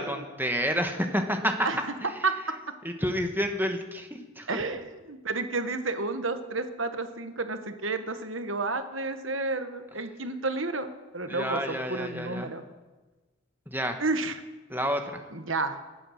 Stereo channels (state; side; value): normal; both; correlation 0.27